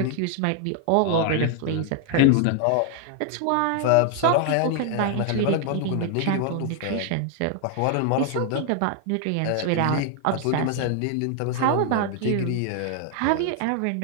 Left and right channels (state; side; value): different; both; correlation 0.00